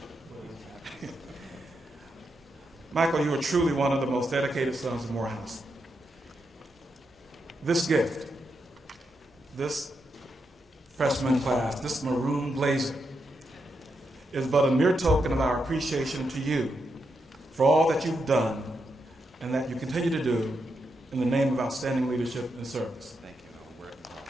Michael, you are truly one of the most dedicated sons of Morehouse. This gift, this freshman class, this maroon blazer, is but a mere token of our appreciation to you for all that you've done and that you continue to do in the name of outstanding leadership and service. Thank you.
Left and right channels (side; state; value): both; normal; correlation 0.83